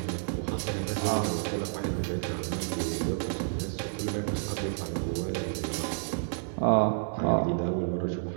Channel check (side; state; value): left; silent; digital silence